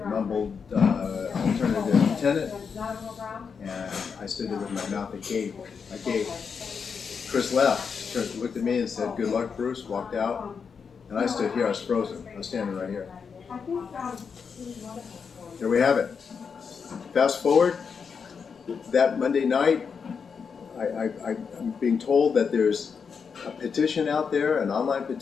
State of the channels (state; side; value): quieter; right; 6.0 dB